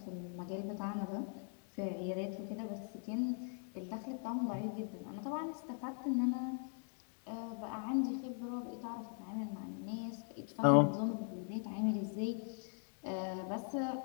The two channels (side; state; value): right; silent; 51 dB below the other